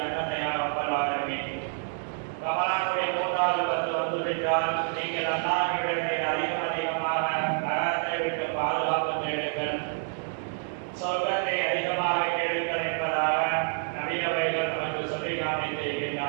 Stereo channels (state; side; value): silent; left; 59 dB below the other